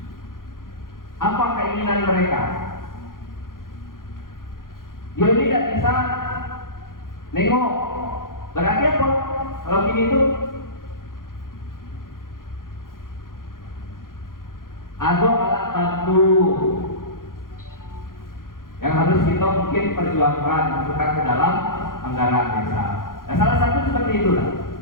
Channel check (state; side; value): late; right; 0.90 ms